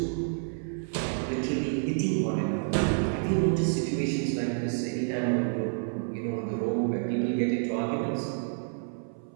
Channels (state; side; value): silent; left; 59 dB below the other